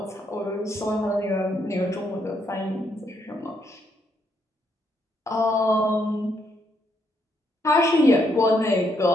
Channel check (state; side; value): normal; both; correlation 0.75